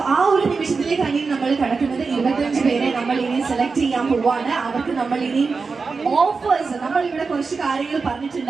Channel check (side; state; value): left; quieter; 4.6 dB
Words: ആ ഒരു നിമിഷത്തിലേക്കാണ് ഇനി നമ്മൾ കിടക്കുന്നത്. 25 പേരെ നമ്മൾ ഇനി സെലക്ട് ചെയ്യാൻ പോവാണ്. അവർക്ക് നമ്മൾ ഇനി ഓഫേഴ്സ്, നമ്മൾ ഇവിടെ കുറച്ച് കാര്യങ്ങൾ